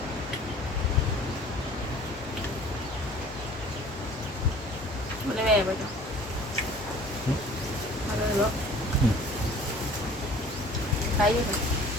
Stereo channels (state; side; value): normal; both; correlation 0.48